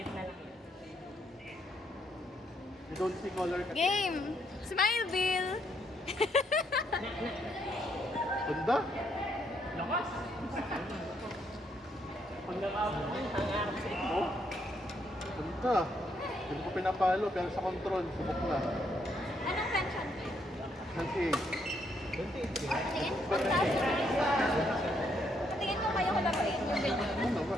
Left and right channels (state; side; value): normal; both; correlation 0.73